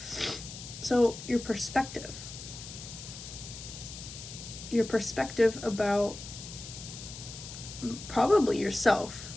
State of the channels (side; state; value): left; noise; hiss, 12 dB below the sound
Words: So your perspective about probably yourself.